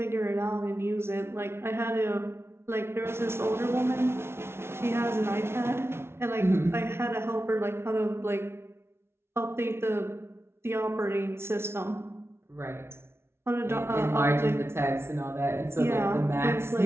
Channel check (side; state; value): left; late; 0.12 ms